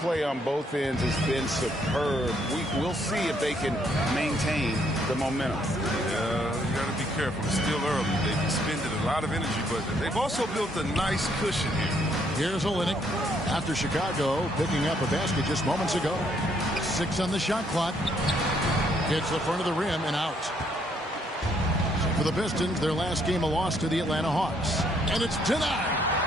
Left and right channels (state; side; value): normal; both; correlation 0.70